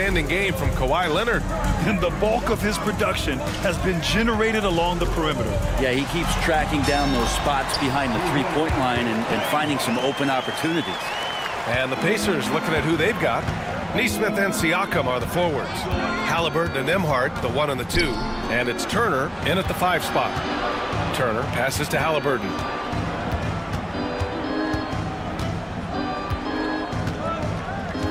game from Kawhi Leonard. And the bulk of his production has been generated along the perimeter. Yeah, he keeps tracking down those spots behind the three-point line and finding some open opportunities. And the Pacers looking at who they've got. Nesmith and Siakam are the forwards. Halliburton and Nembhard, the 1 and the 2. And it's Turner in at the 5 spot. Turner passes to Halliburton.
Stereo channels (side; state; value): both; identical; correlation 1.00